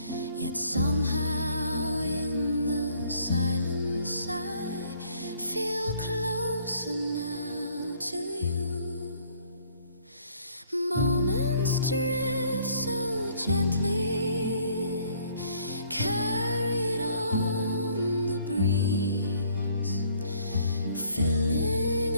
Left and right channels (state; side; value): inverted; both; correlation -0.62